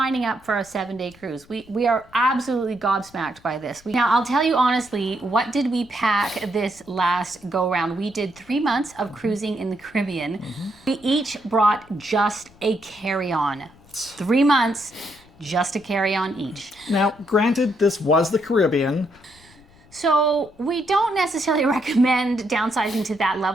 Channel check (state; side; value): noise; left; rumble, 27 dB below the sound